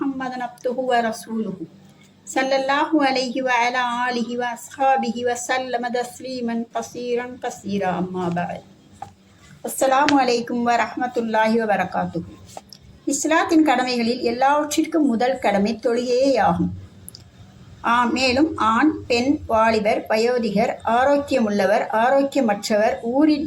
عبده ورسوله صلى الله عليه وعلى آله وأصحابه وسلم تسليما كثيرا أما بعد السلام عليكم ورحمة الله وبركاته. இஸ்லாத்தின் கடமைகளில் எல்லாவற்றிற்கும் முதல் கடமை தொழுகையேயாகும். மேலும் ஆண், பெண், வாலிபர், வயோதிகர், ஆரோக்கியமுள்ளவர், ஆரோக்கியமற்றவர், ஊரில்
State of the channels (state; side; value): identical; both; correlation 1.00